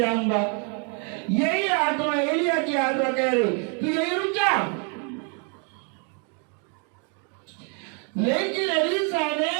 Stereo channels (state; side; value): quieter; left; 39.0 dB